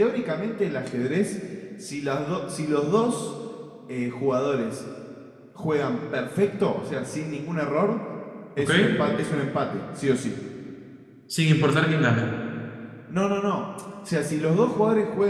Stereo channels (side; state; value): both; identical; correlation 1.00